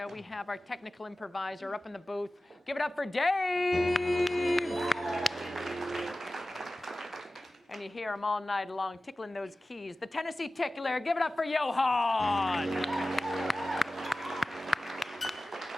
we have our technical improviser up in the booth. Give it up for Dave! And you hear him all night long tickling those keys. The Tennessee Tickler, give it up for Johan!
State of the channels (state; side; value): normal; both; correlation 0.96